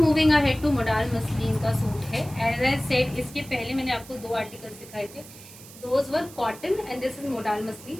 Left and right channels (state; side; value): noise; right; hiss, 18 dB below the sound